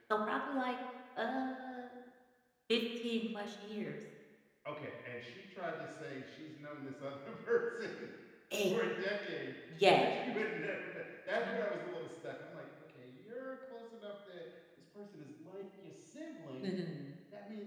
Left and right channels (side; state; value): both; identical; correlation 1.00